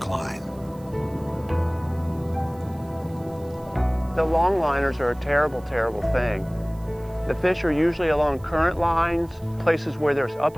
The longliners are a terrible, terrible thing. The fish are usually along current lines, places where there's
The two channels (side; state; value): right; noise; hiss, 28 dB below the sound